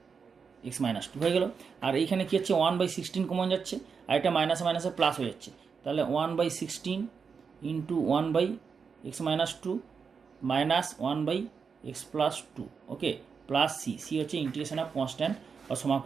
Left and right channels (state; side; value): quieter; left; 5.8 dB